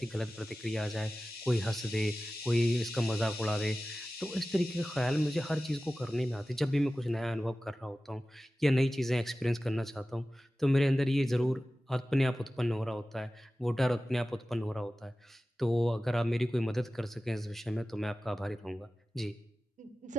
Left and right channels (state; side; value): normal; both; correlation 0.96